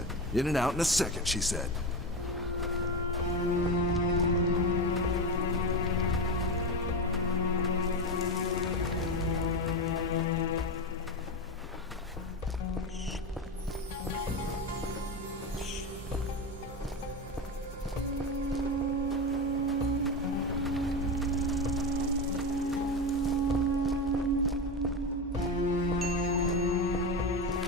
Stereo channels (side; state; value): both; normal; correlation 0.18